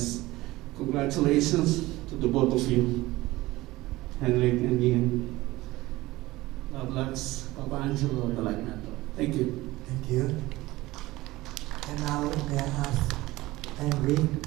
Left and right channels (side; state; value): left; quieter; 18.8 dB